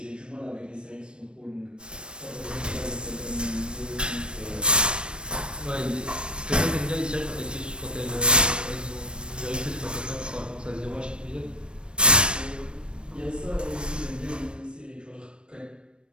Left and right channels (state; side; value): late; left; 0.055 ms